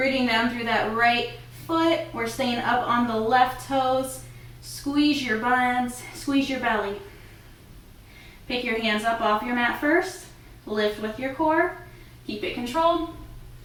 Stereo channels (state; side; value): identical; both; correlation 1.00